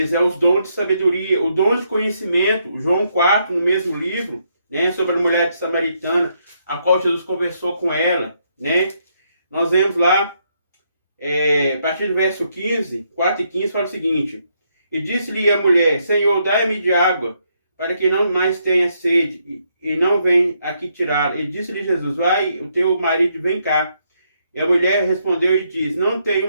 os dons de sabedoria, o dom de conhecimento, João 4, no mesmo livro, né? Sobre a mulher de Samaritana, a qual Jesus conversou com ela, né? Nós vemos lá, a partir do verso 15, 4 e 15, fala o seguinte: E disse-lhe a mulher: Senhor, dai-me de água, para que não mais tenha sede, e não venha aqui tirá-la. E disse-lhe Jesus: Vai, o teu marido vem cá. E a mulher respondeu e disse: Não tenho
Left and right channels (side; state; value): both; inverted; correlation -0.75